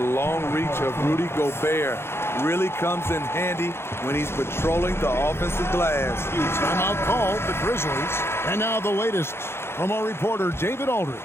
reach of Rudy Gobert really comes in handy when he's patrolling the offensive glass. Timeout called, the Grizzlies. And now the latest from our reporter, David Aldridge.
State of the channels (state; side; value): late; right; 0.12 ms